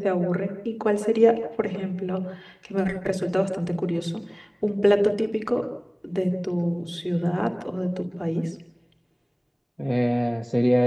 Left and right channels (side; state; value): both; identical; correlation 1.00